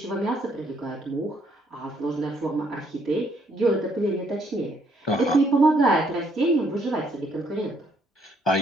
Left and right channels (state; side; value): normal; both; correlation 0.69